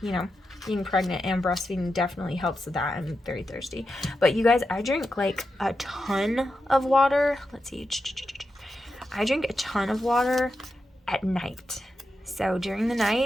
you know, being pregnant and breastfeeding definitely helps with that. I'm very thirsty. But you guys, I drink like a ton of water. Let's see. I drink a ton of water at night. So during the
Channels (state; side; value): normal; both; correlation 0.88